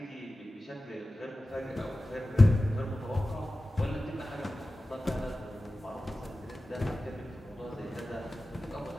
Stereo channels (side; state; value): both; normal; correlation 0.95